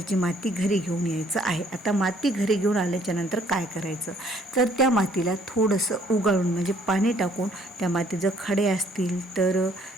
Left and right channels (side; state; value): both; normal; correlation 0.62